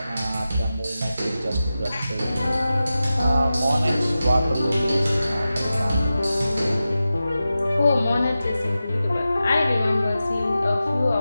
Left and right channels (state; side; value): inverted; both; correlation -0.93